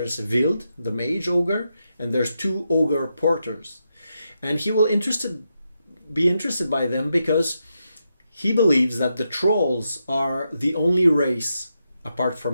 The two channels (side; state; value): both; inverted; correlation -0.84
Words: Wild, the mage ogre, and there's 2 ogre porters. And he will be interested by them because he believes that the trolls are the only race, apart